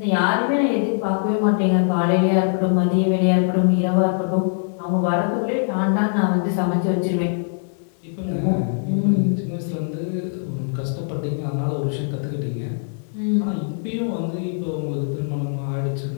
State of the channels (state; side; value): silent; right; digital silence